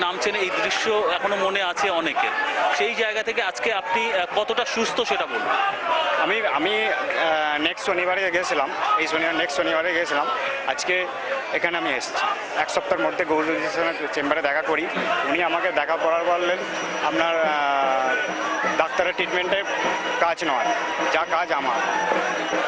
নামছেন, এই দৃশ্য এখনো মনে আছে অনেকের। সেই জায়গা থেকে আজকে আপনি কতটা সুস্থ সেটা বলুন। আমি নেক্সট শনিবারে গেছিলাম, নেক্সট শনিবারে গেছিলাম, আজকে এখানে আমি এসেছি। এক সপ্তাহের মধ্যে গৌরীর চেম্বারে দেখা করি, উনি আমাকে দেখা করার বললেন আপনার ডাক্তারের ট্রিটমেন্টে কাজ নয়, যা কাজ আমার।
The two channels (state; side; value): identical; both; correlation 1.00